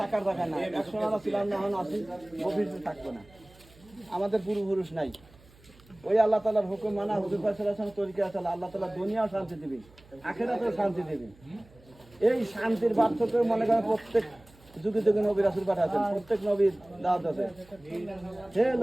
জায়গা না, একসময় আমরা ছিলাম না, এখন আসি ভবিষ্যতে থাকবো না, আমাদের পূর্বপুরুষ নাই। ওই আল্লাহ তাআলার হুকুম মানা, হুজুর পাক সাল্লাল্লাহু আলাইহি ওয়াসাল্লাম তরিকা আছে, আল্লাহ তাআলা দুনিয়াও শান্তি দিবেন, আখিরাতেও শান্তি দিবেন। এই শান্তির বার্তা তো মনে করেন প্রত্যেক যুগে যুগে নবী রাসূল পাঠাচ্ছেন, প্রত্যেক নবীর দাওয়াত আছে, হে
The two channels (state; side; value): noise; right; hum, 26 dB below the sound